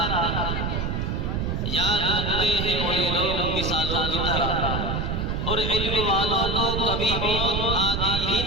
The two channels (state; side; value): noise; right; rumble, 1 dB below the sound